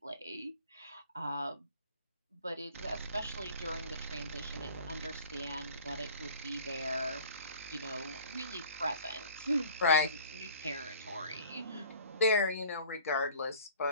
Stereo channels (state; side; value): inverted; both; correlation -0.47